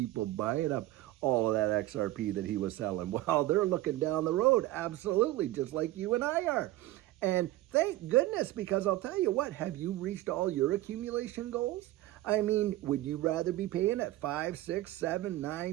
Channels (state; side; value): quieter; left; 16.4 dB